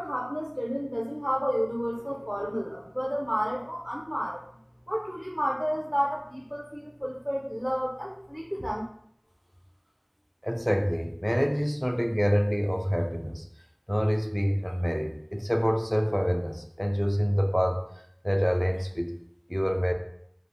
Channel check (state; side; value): identical; both; correlation 1.00